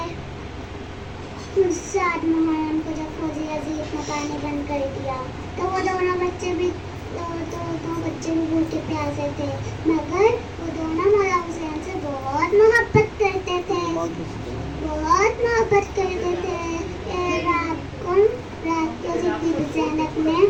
सात मुहर्रम को जब फौजी अजीब ने पानी बंद कर दिया तो वो दोनों बच्चे भी भूखे प्यासे थे, मगर वो दोनों मौला हुसैन से बहुत मोहब्बत करते थे। रात को जब बीबी ज़ैनब ने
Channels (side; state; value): both; identical; correlation 1.00